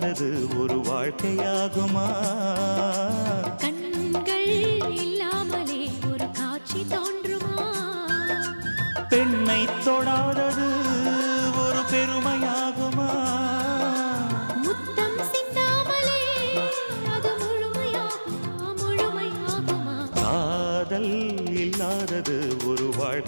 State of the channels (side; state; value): both; inverted; correlation -1.00